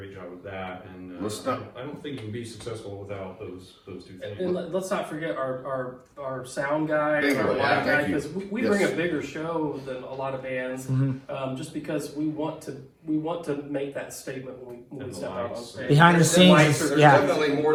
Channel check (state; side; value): identical; both; correlation 1.00